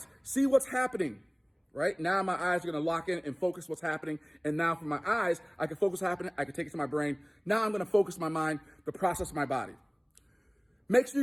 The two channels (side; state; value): both; identical; correlation 1.00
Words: see what's happening, right? Now my eyes are going to lock in and focus what's happening. And now from my eyes, I can focus what's happening. I can take it to my brain. Now I'm going to focus my mind, the process of my body. Make sure